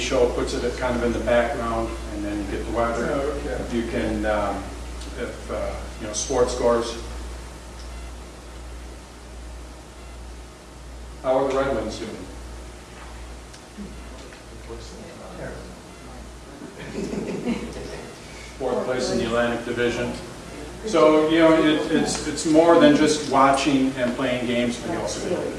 it puts it kind of in the background, and then you get the weather. Okay. You can, sports scores. How are the Red Wings doing? Fourth place in the Atlantic Division. So, it's more than just watching and playing games, but you also get a bit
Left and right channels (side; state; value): both; identical; correlation 1.00